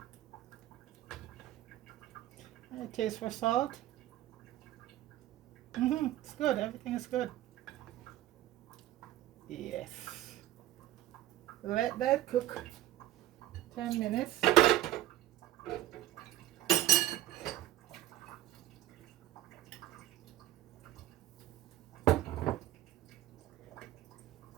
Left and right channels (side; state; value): left; quieter; 14.2 dB